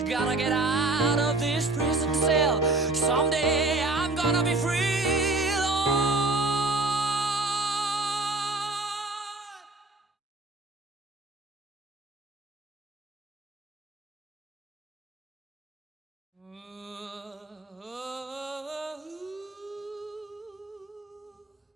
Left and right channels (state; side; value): quieter; left; 3.1 dB